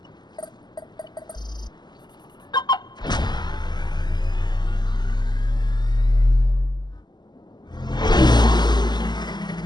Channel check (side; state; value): right; late; 0.21 ms